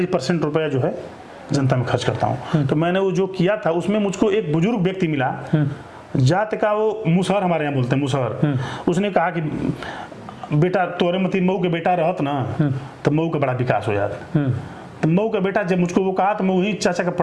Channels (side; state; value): both; identical; correlation 1.00